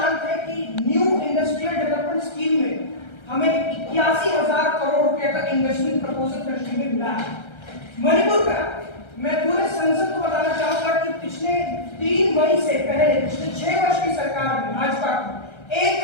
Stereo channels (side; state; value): right; late; 1.3 ms